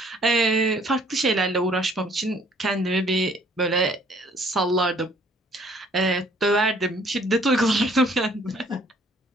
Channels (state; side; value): normal; both; correlation 0.60